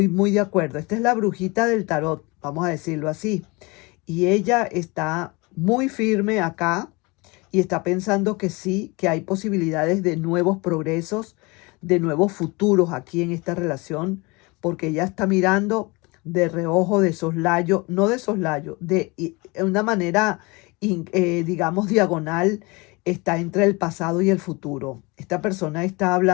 muy de acuerdo. Esta es la brujita del tarot, vamos a decirlo así. Y ella está muy firme acá y está pensando que sí, que hay posibilidades de nuevos progresos, de nuevos futuros aquí en esta relación, porque ella está mirando de reojo, de soslayo, no de soslayo, de una manera, digamos, diagonal, está entre el pasado y el futuro. Esta persona está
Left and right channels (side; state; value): right; quieter; 26.1 dB